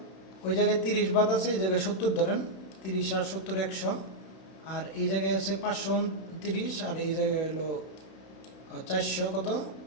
ওই জায়গায় 30 বাদ আছে, এই জায়গায় 70 ধরেন, 30 আর 70 100, আর এই জায়গায় আছে 529 আর এই জায়গায় হলো 400 কত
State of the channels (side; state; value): right; late; 31 ms